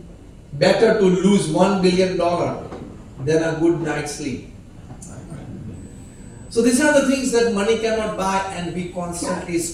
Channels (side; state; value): both; identical; correlation 1.00